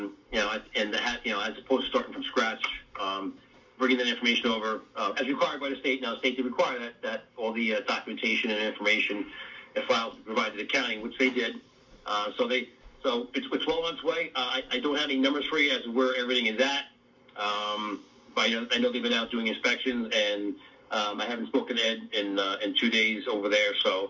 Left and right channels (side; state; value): both; identical; correlation 1.00